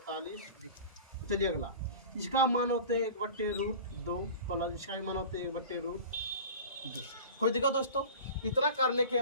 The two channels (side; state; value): both; inverted; correlation -0.38